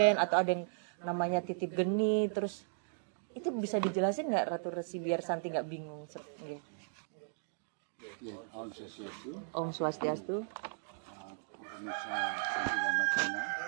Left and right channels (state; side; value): silent; left; digital silence